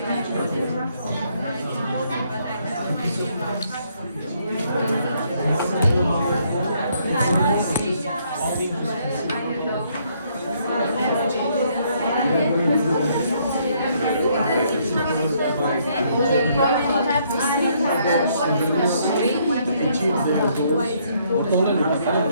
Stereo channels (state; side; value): inverted; both; correlation -0.69